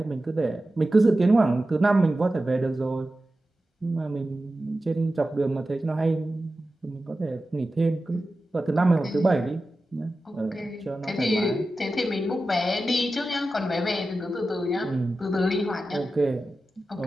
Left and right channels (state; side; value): normal; both; correlation 0.93